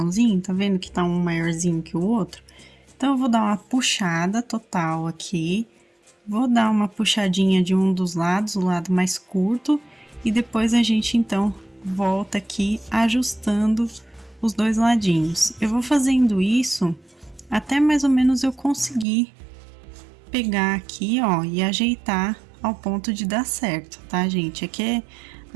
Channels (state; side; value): drops out; left; at 19.1 s